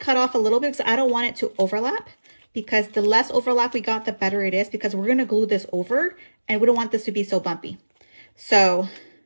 off a little bit because I don't want it to overlap, because the less overlap we got, the better it is, because we're gonna glue this over, and we don't want this to be so bumpy. So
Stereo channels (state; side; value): inverted; both; correlation -1.00